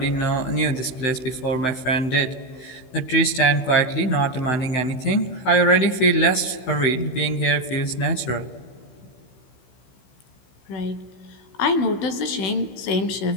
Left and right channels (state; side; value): late; right; 16 ms